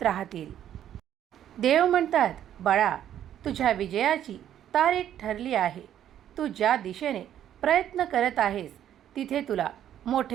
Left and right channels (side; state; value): left; quieter; 10.7 dB